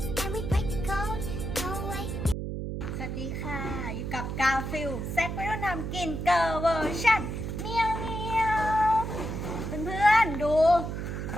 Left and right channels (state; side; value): noise; right; hum, 4 dB below the sound